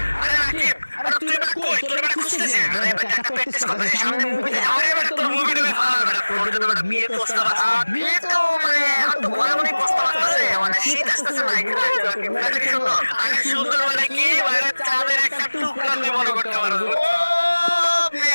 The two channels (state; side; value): inverted; both; correlation -1.00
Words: আরে রাকিব, আরে তুই বেটা কই? তোর বেটা খুঁজতেছে। আরে বেটা একটা প্র্যাকটিস করতে সামনে মুভিতে যাও। আরে বেটা তোর মুভি দেবে ফাল বেটা। তোর জন্য বেটা বিয়ে প্রস্তাব বিয়ে তো মানে এখন তো ঘরে মনে প্রস্তাব আসতেছে, মানে শীত আসতেছে না এখানে রাকিব। বেটা কি সুন্দর। আরে সুন্দর মানে কি, মানে চাঁদের একটা টুকরা তুই মনে করতে পারো। ও